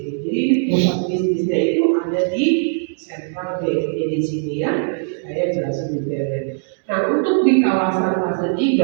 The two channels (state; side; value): silent; left; digital silence